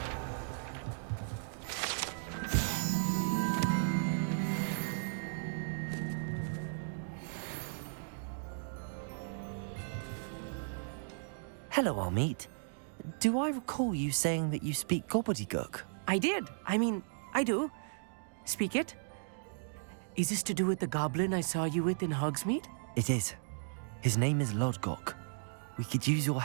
Hello, Armeet. Do I recall you saying that you speak gobbledygook? I did. I mean, I do. Speak it. Is this to do with the goblin I saw you with in Hogsmeade? It is. His name is Lodgok. We could use your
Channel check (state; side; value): silent; left; digital silence